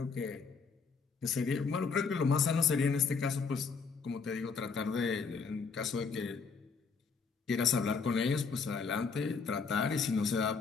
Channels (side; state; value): right; quieter; 5.2 dB